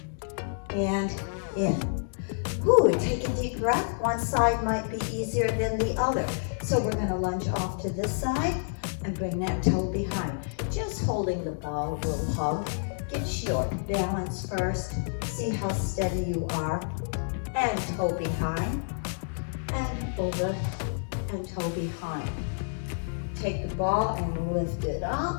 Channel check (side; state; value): right; silent; digital silence